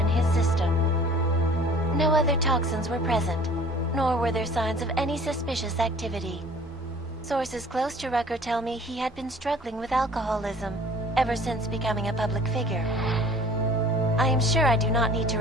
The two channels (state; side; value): normal; both; correlation 0.49